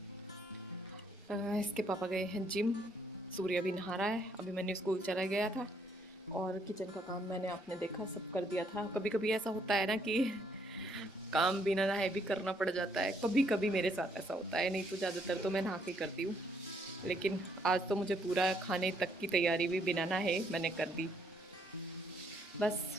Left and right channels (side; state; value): both; normal; correlation 0.70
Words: इसके पापा गए हैं जिम, सूर्य भी नहा रहा है, अभी मैंने स्कूल चला गया था और किचन का काम मैंने आपने देखा सब कर दिया था। कभी-कभी ऐसा होता है ना कि काम बिना नहाए भी करना पड़ जाता है, कभी-कभी मेरे साथ ऐसा होता है, नहीं तो ज़्यादातर तो मैं नहा के करती हूँ। लेकिन आज तो मुझे पूरा खाने तक की तैयारी भी बिना नहाए मैंने कर दी। बस